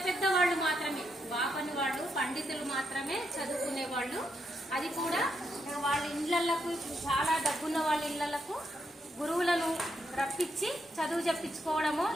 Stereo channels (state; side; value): normal; both; correlation 0.80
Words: పెద్ద వాళ్ళు మాత్రమే, బాపని వాళ్ళు, పండితులు మాత్రమే చదువుకునేవాళ్ళు. అది కూడా వాళ్ళ ఇళ్లకు, చాలా డబ్బున్న వాళ్ళ ఇళ్లకు గురువులను రప్పించి చదువు చెప్పించుకోవడమో,